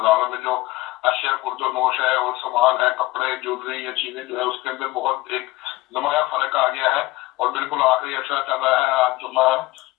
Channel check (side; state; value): right; quieter; 19.6 dB